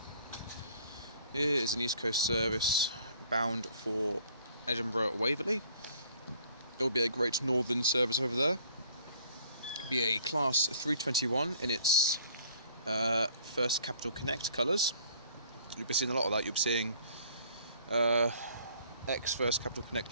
Here is an East Coast service bound for Edinburgh Waverley. There will be a Great Northern service over there. It'll be a Class 321 in its First Capital Connect colours. You'll be seeing a lot of that. You'll be seeing First Capital Connect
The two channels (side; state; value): both; inverted; correlation -0.56